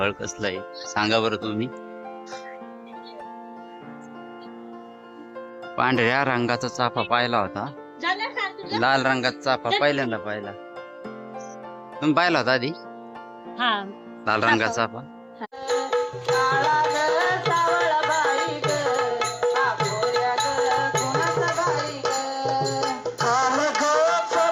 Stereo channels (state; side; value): identical; both; correlation 1.00